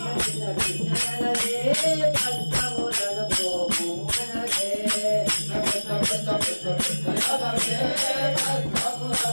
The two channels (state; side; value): inverted; both; correlation -1.00